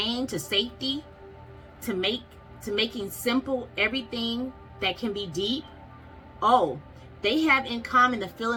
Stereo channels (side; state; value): both; identical; correlation 1.00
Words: to safety, to making simple everything that can be deep. Oh, they have in common the